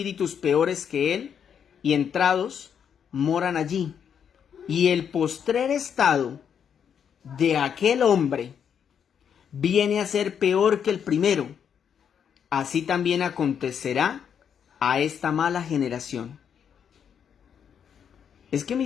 peores que él, y entrados moran allí. Y el postrer estado de aquel hombre viene a ser peor que el primero. Así también acontecerá a esta mala generación. Es que,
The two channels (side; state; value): right; quieter; 7.9 dB